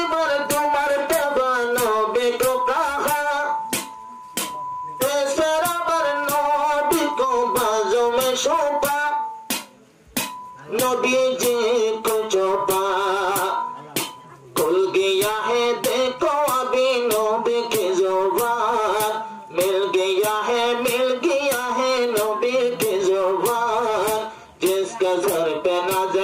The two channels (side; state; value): both; identical; correlation 1.00